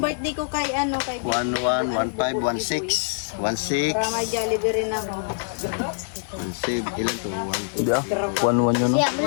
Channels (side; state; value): right; silent; digital silence